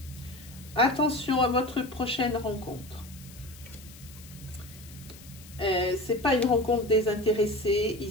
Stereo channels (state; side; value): noise; left; hiss, 20 dB below the sound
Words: Attention à votre prochaine rencontre. C'est pas une rencontre désintéressée